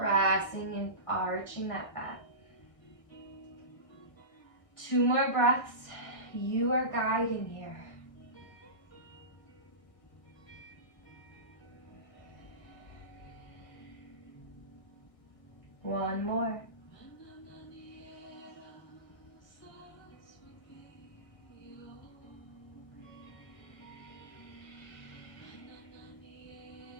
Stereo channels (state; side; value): late; right; 1.6 ms